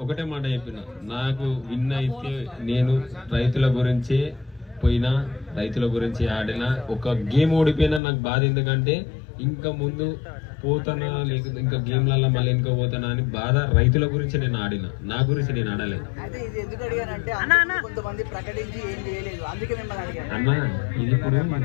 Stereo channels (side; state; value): right; drops out; at 8.0 s